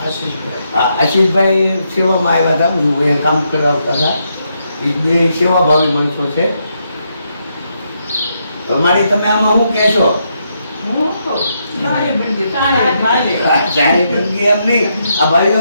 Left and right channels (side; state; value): both; inverted; correlation -0.79